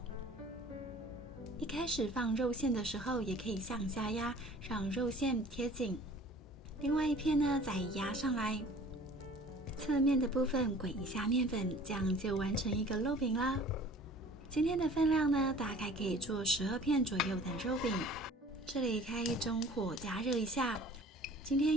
一开始放肉馅的时候，也可以向下压，让肉馅贴紧。另外一片呢，再压上来，侧面的部分滚一下面粉，这样就完成一个肉饼啦。今天的分量呢，大概可以做12片左右的肉饼。这里开中火加热一下。今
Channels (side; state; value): both; normal; correlation 0.48